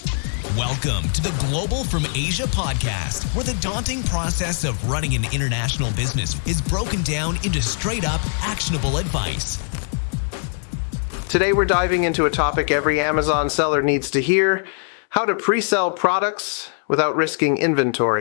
Welcome to the Global from Asia podcast, where the daunting process of running an international business is broken down into straight-up, actionable advice. Today we're diving into a topic every Amazon seller needs to hear: how to pre-sell products without risking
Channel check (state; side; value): silent; right; 61 dB below the other